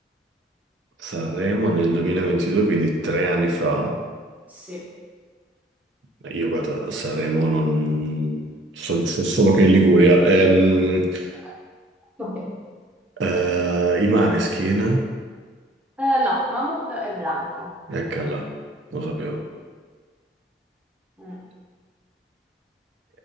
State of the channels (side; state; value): both; normal; correlation 0.55